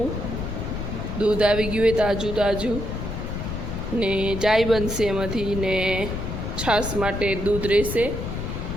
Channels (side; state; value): left; noise; rumble, 5 dB below the sound